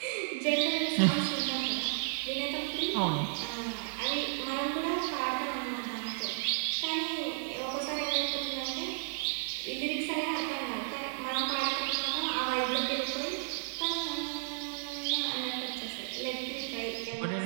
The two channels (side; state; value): left; silent; digital silence